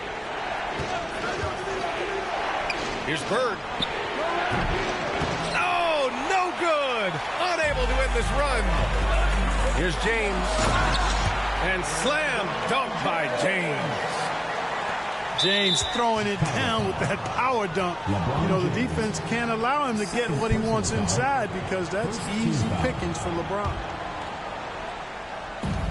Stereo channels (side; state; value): both; identical; correlation 1.00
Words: Here's Bird. Oh, no good. Unable to end this run. Here's James. And slam dunk by James. James throwing it down with that power dunk. You know, the defense can't allow him to get what he wants inside because that's easy pickings for LeBron.